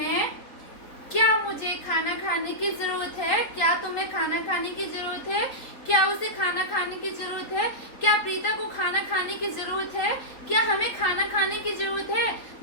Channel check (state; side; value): late; right; 3.9 ms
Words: क्या मुझे खाना खाने की जरूरत है, क्या तुम्हें खाना खाने की जरूरत है, क्या उसे खाना खाने की जरूरत है, क्या प्रीता को खाना खाने की जरूरत है, क्या हमें खाना खाने की जरूरत है।